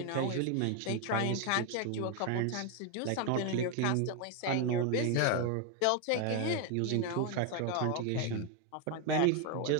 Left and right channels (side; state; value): both; different; correlation 0.01